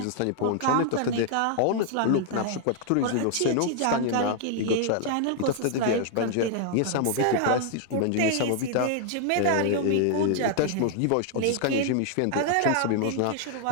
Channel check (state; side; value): different; both; correlation 0.00